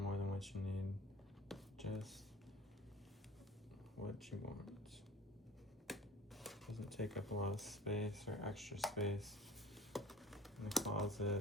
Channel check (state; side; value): normal; both; correlation 0.44